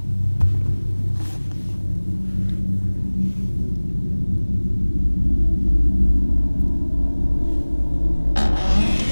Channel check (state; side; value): inverted; both; correlation -1.00